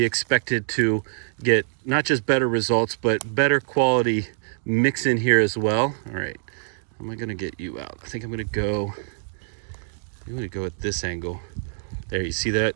expected to get not just better results, but better quality mix in here as well. All right, how am I gonna get you out? I think I'm gonna go at this angle. There, you see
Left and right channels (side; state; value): left; silent; digital silence